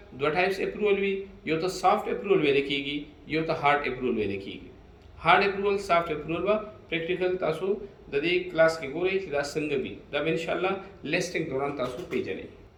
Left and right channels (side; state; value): both; identical; correlation 1.00